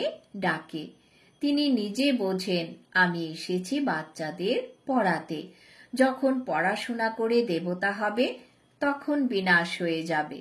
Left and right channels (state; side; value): identical; both; correlation 1.00